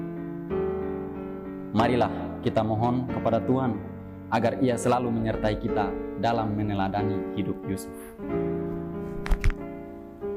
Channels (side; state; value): both; identical; correlation 1.00